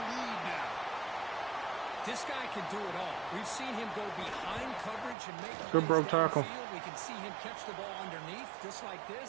now. This guy can do it all. We've seen him go behind coverage and make good broke tackle. We can see him catch the ball underneath, just like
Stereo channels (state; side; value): drops out; left; at 5.2 s